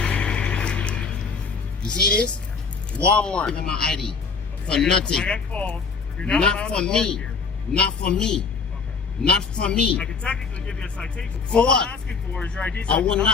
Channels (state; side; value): quieter; right; 5.1 dB